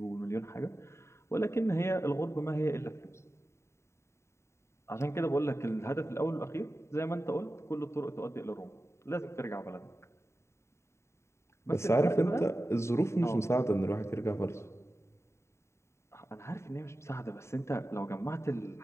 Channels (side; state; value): right; late; 0.13 ms